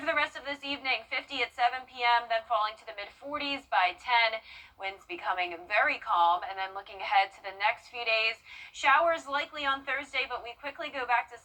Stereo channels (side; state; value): both; identical; correlation 1.00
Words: the rest of this evening, 50 at 7 p.m., then falling to the mid-40s by 10. Winds becoming very calm, and then looking ahead to the next few days, showers likely on Thursday, but we quickly go back to